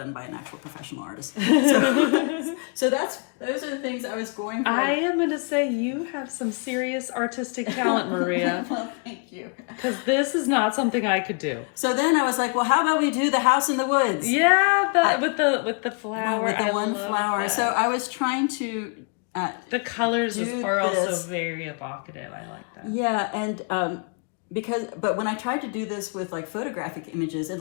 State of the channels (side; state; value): right; quieter; 37.9 dB